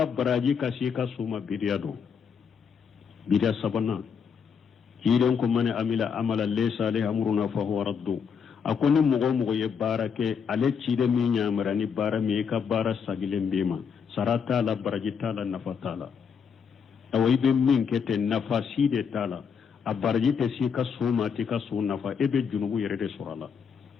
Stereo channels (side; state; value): right; quieter; 6.7 dB